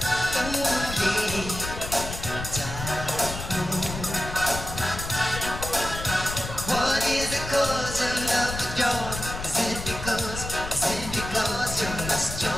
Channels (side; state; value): left; noise; rumble, 8 dB below the sound